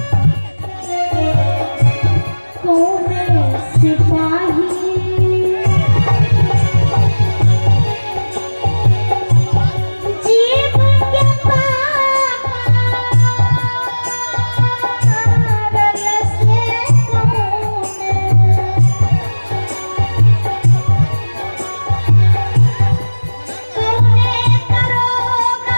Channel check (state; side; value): inverted; both; correlation -1.00